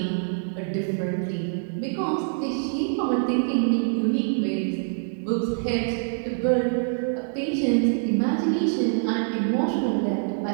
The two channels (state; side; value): silent; left; digital silence